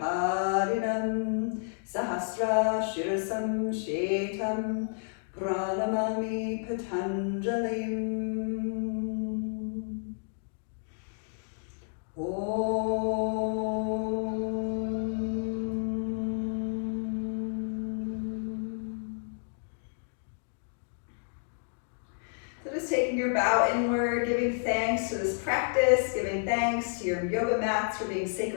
Sahasra Shirasam Shetam Pranamami Patanjalim. So just taking your bow inward, giving thanks to this practice, giving thanks to your yoga mats for being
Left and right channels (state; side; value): silent; right; digital silence